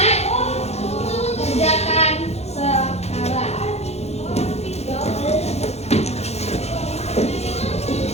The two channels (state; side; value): late; right; 0.31 ms